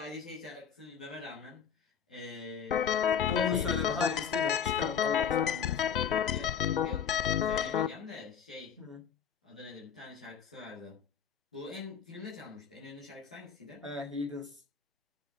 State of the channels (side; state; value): right; quieter; 7.5 dB